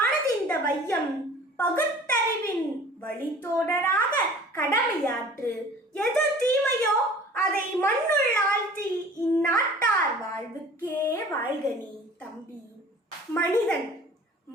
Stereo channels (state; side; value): normal; both; correlation 0.46